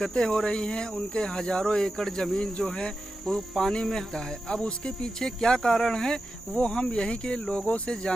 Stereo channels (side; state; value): both; normal; correlation 0.91